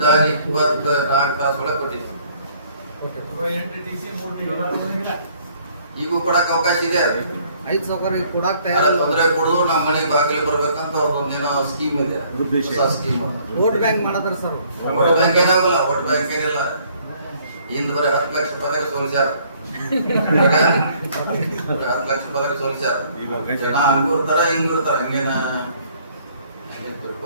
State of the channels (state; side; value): inverted; both; correlation -0.61